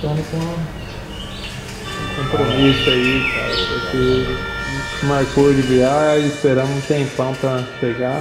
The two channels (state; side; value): identical; both; correlation 1.00